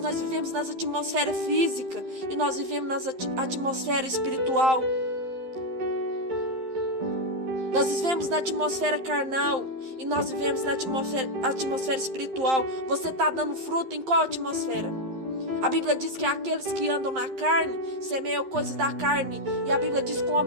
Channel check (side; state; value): left; late; 11 ms